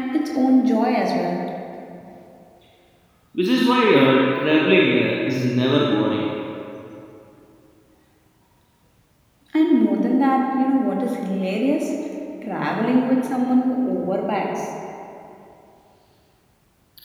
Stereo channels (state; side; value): identical; both; correlation 1.00